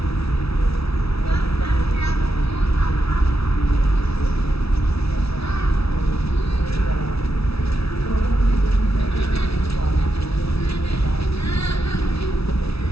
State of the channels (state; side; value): late; right; 0.77 ms